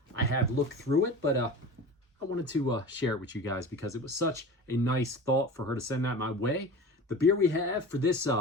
I have looked through it, but I wanted to share it with you guys because it was such a nice thought for her to send that my way. The beer we have for this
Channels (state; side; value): normal; both; correlation 0.34